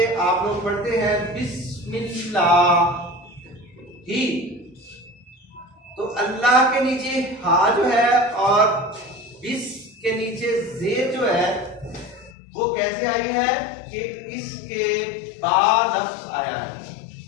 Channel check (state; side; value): drops out; right; at 12.3 s